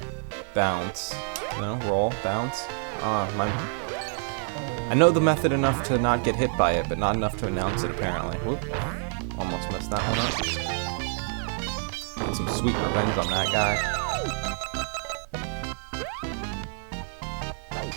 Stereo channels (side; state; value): left; silent; 60 dB below the other